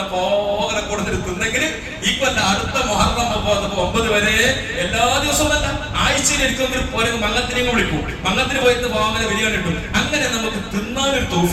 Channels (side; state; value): both; identical; correlation 1.00